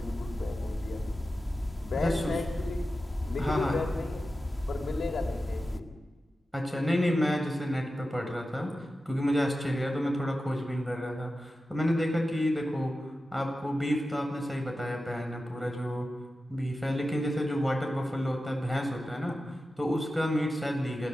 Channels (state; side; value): normal; both; correlation 0.93